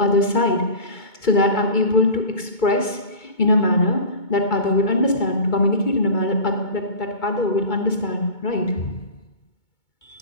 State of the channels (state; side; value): late; right; 2.2 ms